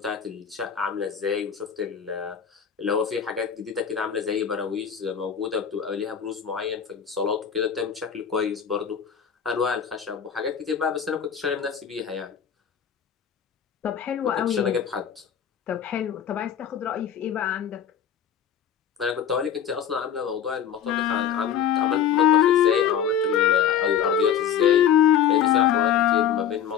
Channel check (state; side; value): quieter; right; 8.5 dB